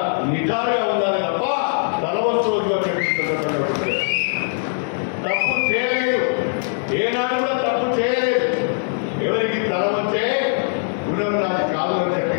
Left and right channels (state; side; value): silent; right; 65 dB below the other